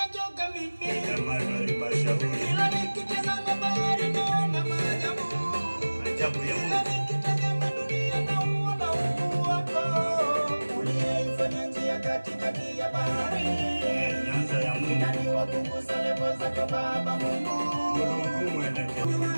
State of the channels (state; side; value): inverted; both; correlation -1.00